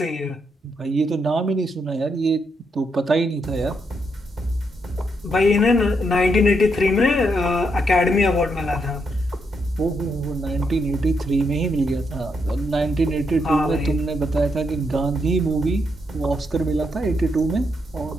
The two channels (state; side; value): normal; both; correlation 0.79